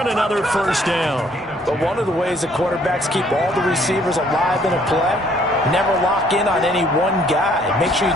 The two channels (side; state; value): both; normal; correlation 0.63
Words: another first down. But one of the ways that quarterbacks keep all the receivers alive in a play, never lock in on any one guy. Make sure you